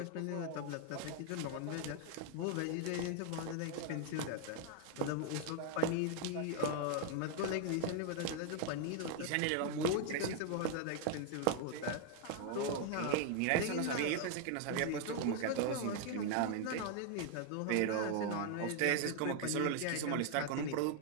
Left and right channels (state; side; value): different; both; correlation 0.01